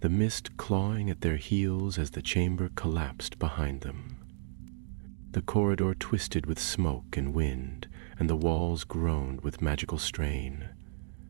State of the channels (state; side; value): silent; left; digital silence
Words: mist clawing at their heels as the chamber collapsed behind them. The corridor twisted with smoke and wind, and the walls groaned with magical strain.